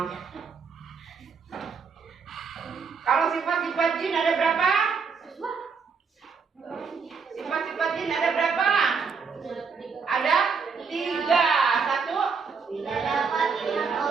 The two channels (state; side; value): quieter; left; 5.5 dB